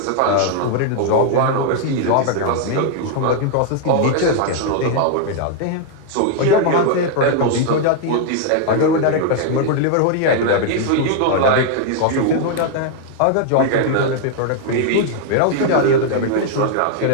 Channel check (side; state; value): both; different; correlation 0.00